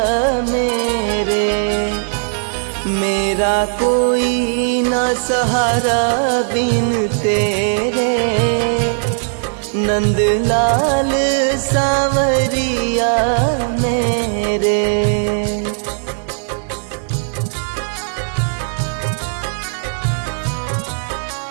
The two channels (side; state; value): left; silent; digital silence